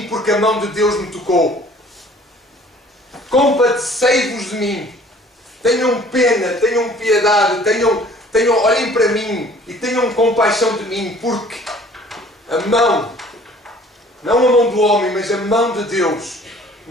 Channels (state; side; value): normal; both; correlation 0.52